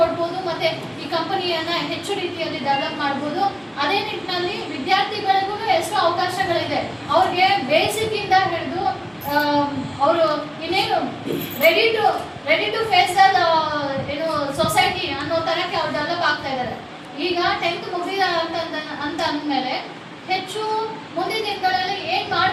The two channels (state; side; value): identical; both; correlation 1.00